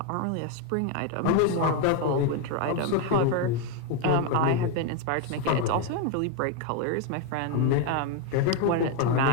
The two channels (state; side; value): different; both; correlation 0.01